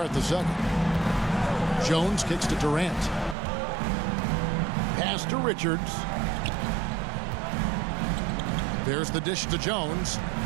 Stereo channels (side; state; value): left; drops out; at 3.4 s